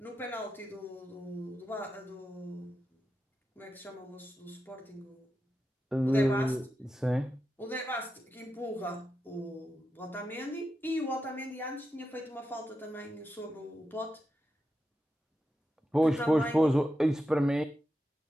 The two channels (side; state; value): both; normal; correlation 0.89